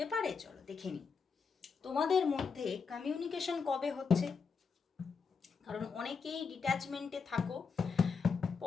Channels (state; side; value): quieter; right; 5.4 dB